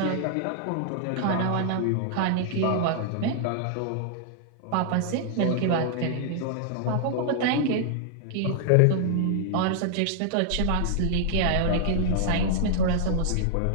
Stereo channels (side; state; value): both; different; correlation -0.01